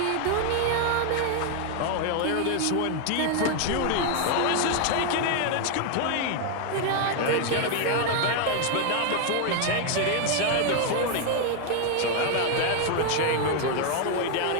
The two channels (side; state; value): both; different; correlation 0.00